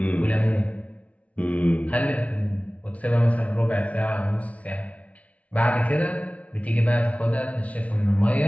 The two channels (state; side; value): late; right; 0.066 ms